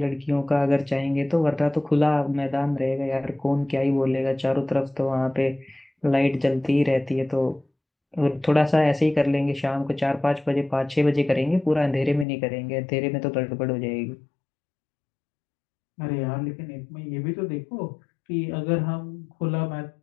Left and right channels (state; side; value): drops out; right; at 12.2 s